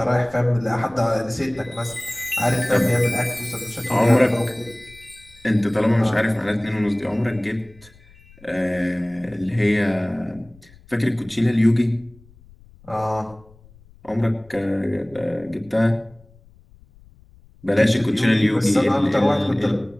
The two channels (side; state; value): left; noise; rumble, 26 dB below the sound